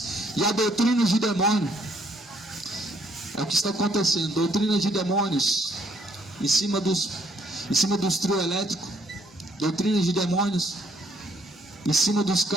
e a doutrinas de demônio. É o que está acontecendo, doutrinas de demônios em cima dos trio elétricos, doutrinas de demônios em cima dos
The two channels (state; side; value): normal; both; correlation 0.67